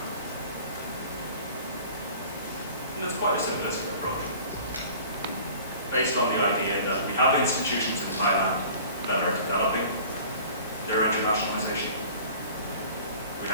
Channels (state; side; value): inverted; both; correlation -0.46